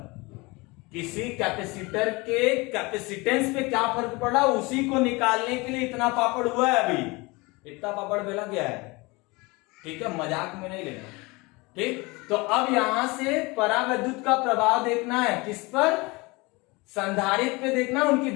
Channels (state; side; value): quieter; right; 24.8 dB